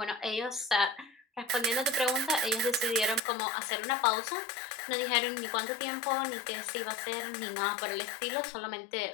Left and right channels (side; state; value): right; drops out; at 3.2 s